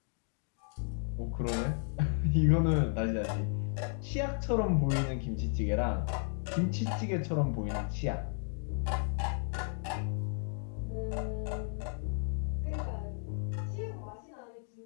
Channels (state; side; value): silent; right; 55 dB below the other